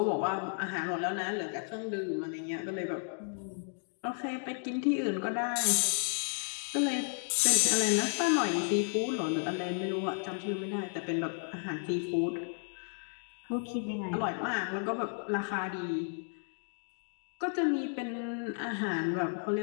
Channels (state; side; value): silent; right; 56 dB below the other